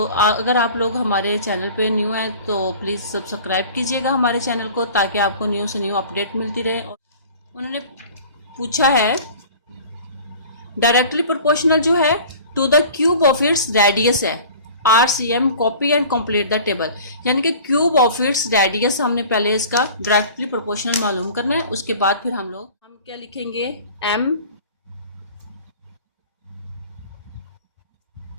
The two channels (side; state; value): both; inverted; correlation -0.43